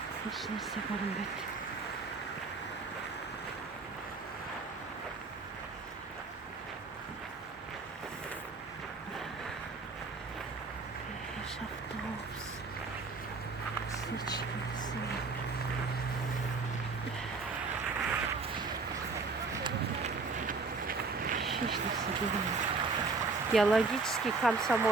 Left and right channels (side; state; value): left; quieter; 4.1 dB